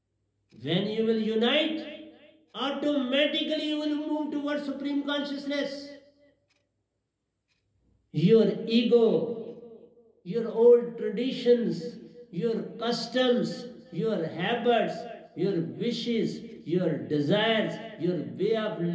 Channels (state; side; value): identical; both; correlation 1.00